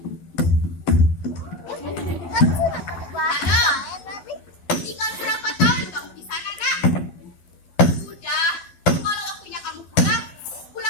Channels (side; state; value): right; late; 12 ms